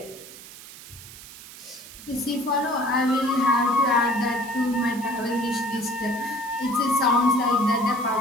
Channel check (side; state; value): right; noise; hiss, 16 dB below the sound